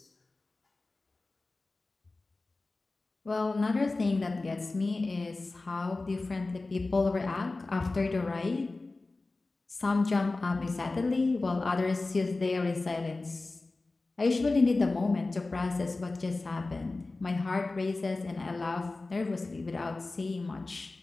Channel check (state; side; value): quieter; right; 3.3 dB